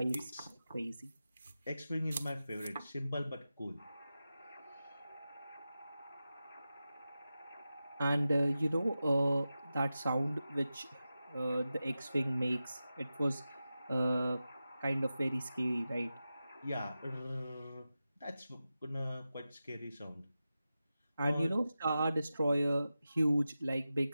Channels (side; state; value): both; inverted; correlation -0.93